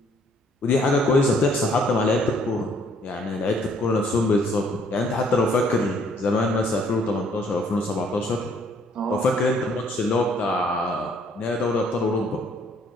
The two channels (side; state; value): both; normal; correlation 0.63